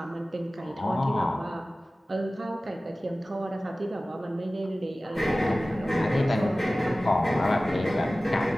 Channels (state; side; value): normal; both; correlation 0.97